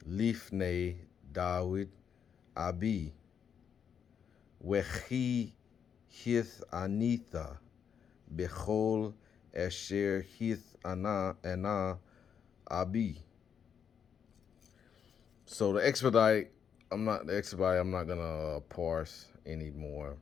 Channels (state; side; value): quieter; right; 7.6 dB